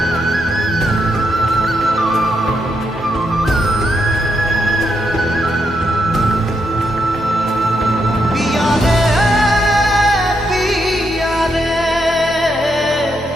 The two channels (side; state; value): both; normal; correlation 0.80